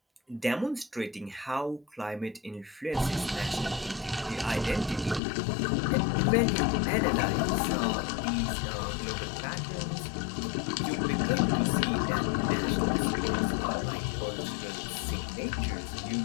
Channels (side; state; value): right; drops out; at 5.2 s